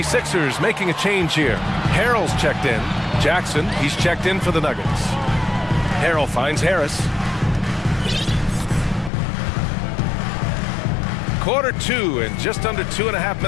making a change here. Harrell's checked in. Jackson, he's checked in for the Nuggets. Harrell finds Harris. Quarter 2 and just under 2.5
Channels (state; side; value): drops out; right; at 9.1 s